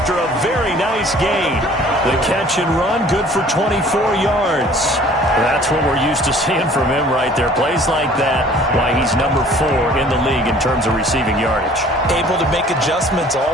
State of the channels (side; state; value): both; normal; correlation 0.52